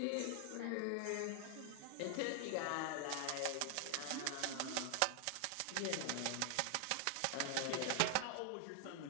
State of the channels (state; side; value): different; both; correlation 0.00